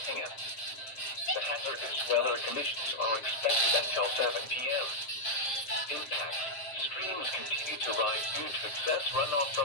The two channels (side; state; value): right; late; 7.5 ms